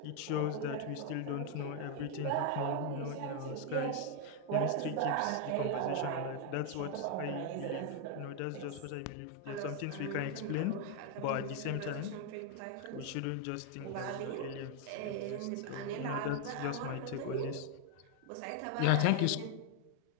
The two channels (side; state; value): both; different; correlation 0.00